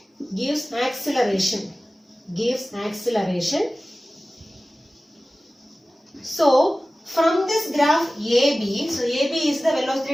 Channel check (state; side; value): normal; both; correlation 0.97